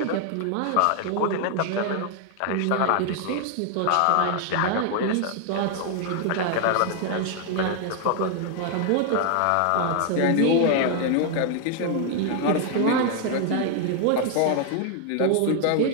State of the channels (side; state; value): both; different; correlation 0.00